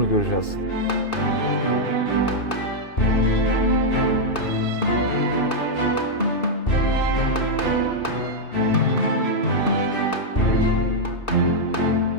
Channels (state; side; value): late; right; 2.5 ms